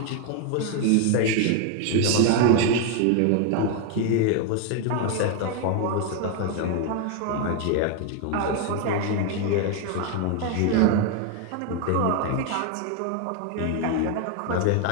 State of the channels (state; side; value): different; both; correlation 0.01